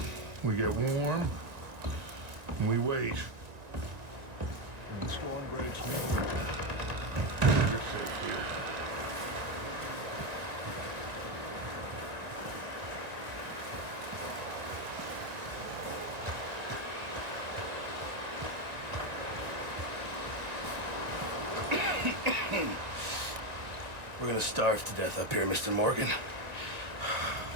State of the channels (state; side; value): late; left; 1.9 ms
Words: we get warm, and we wait. When the storm breaks loose, you're safe here. We're gonna starve to death up here, Mr. Morgan.